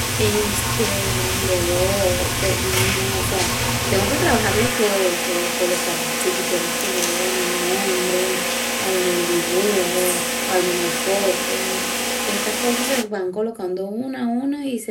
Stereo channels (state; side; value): identical; both; correlation 1.00